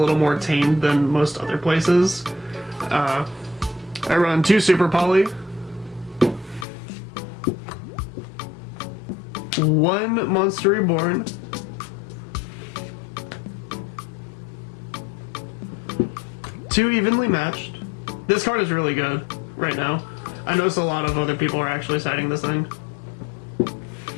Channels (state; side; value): drops out; right; at 6.7 s